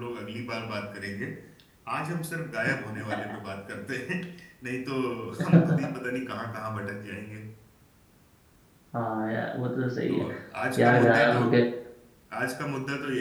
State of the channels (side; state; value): both; identical; correlation 1.00